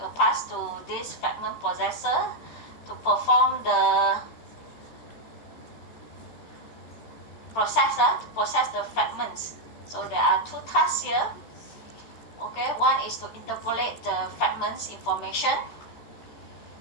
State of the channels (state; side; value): late; right; 13 ms